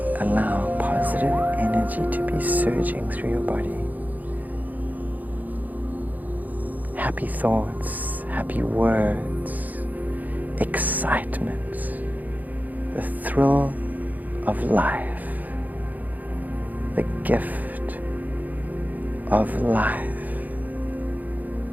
allow positive energy to be surging through your body. Happy thoughts, happy words, excitement, the thrill of life, the gift of life,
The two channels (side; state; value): left; late; 0.081 ms